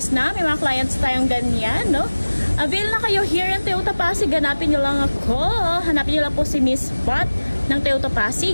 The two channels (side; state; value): both; inverted; correlation -1.00